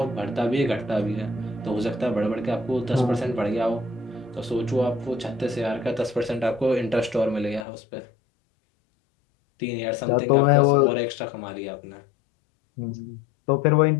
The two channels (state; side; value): drops out; right; at 7.7 s